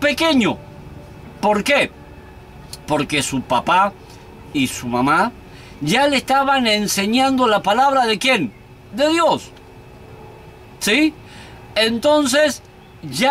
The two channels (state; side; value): identical; both; correlation 1.00